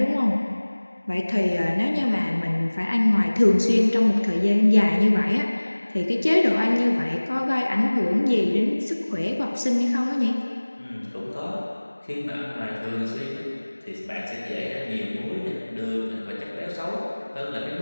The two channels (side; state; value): both; inverted; correlation -1.00